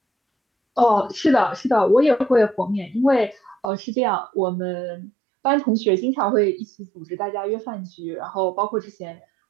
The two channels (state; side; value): drops out; left; at 3.7 s